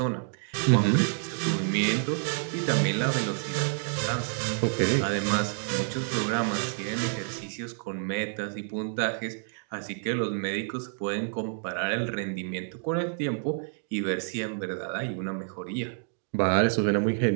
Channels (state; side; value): silent; left; 59 dB below the other